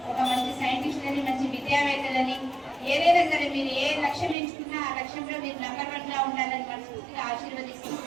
ఒక మంచి సైంటిస్టులని, మంచి విద్యావేత్తలని, ఏదైనా సరే మీరు ఏ లక్ష్యం ఎంచుకున్నా ఆ లక్ష్యంలో మీరు నంబర్ 1గా ఉండాలని మనస్ఫూర్తిగా ఆశీర్వదిస్తూ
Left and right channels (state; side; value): drops out; left; at 4.4 s